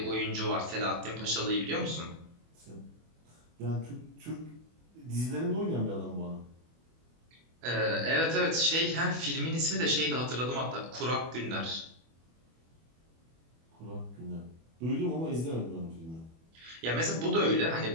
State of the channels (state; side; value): late; left; 24 ms